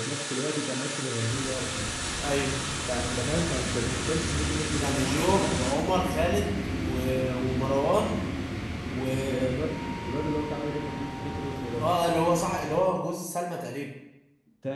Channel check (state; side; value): identical; both; correlation 1.00